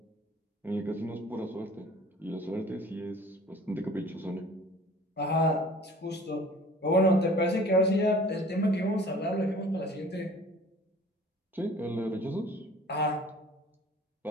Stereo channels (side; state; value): both; normal; correlation 0.48